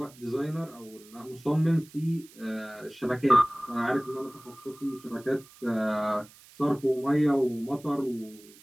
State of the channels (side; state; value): right; noise; hiss, 23 dB below the sound